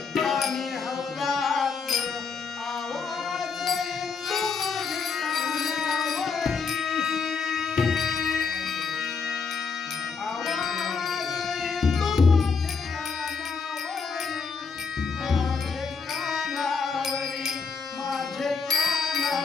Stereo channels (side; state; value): right; quieter; 5.2 dB